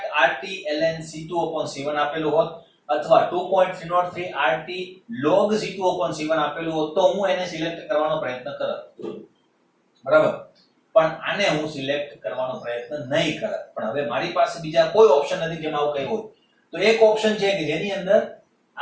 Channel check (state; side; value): identical; both; correlation 1.00